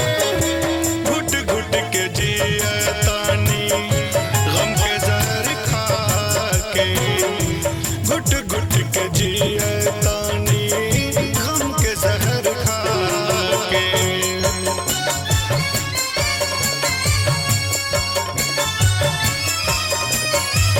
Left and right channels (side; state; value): both; identical; correlation 1.00